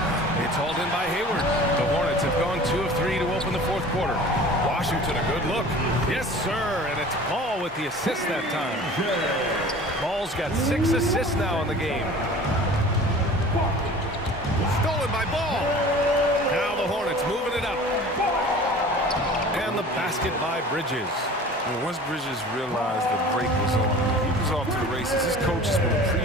It's hauled in by Hayward. The Hornets have gone 2 of 3 to open the fourth quarter. Washington, a good look. Yes, sir, and it's Ball with the assist that time. Ball's got 6 assists now in the game. Stolen by Ball. Now the Hornets moving it up. And the basket by Bridges. And once Bridges realized the break was on, he was off to the races. His coaches will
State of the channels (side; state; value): both; normal; correlation 0.42